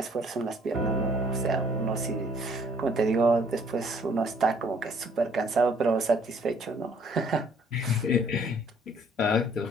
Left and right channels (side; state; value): both; normal; correlation 0.61